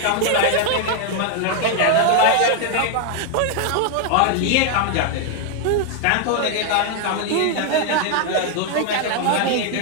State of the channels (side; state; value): both; different; correlation 0.00